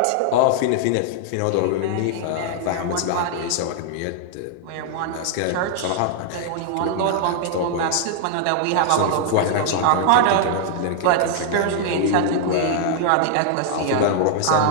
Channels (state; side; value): different; both; correlation -0.01